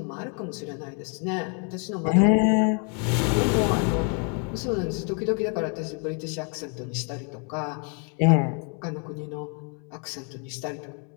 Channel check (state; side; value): quieter; right; 38.6 dB